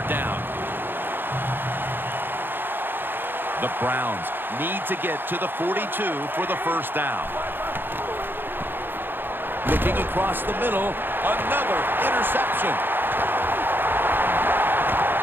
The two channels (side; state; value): left; late; 0.098 ms